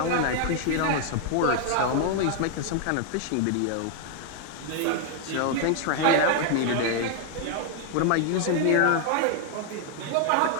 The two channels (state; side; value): different; both; correlation 0.00